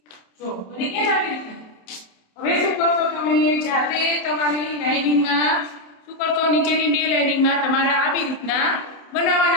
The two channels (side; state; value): right; late; 27 ms